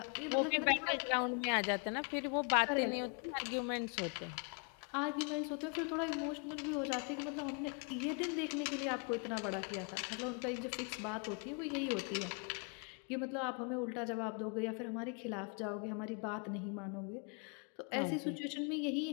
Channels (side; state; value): right; quieter; 37.9 dB